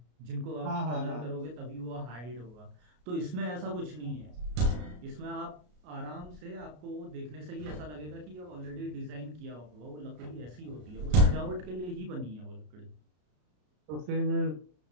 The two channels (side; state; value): left; late; 33 ms